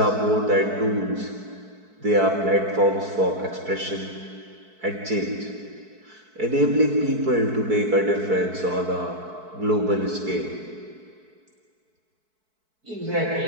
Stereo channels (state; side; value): late; left; 4.6 ms